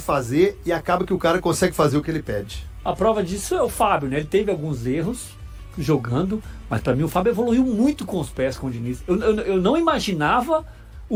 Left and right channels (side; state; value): both; identical; correlation 1.00